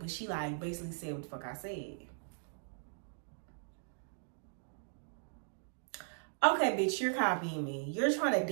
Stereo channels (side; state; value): left; silent; digital silence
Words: she like basically said what the fuck I said. Okay, bitch, you're copying me. You're trying to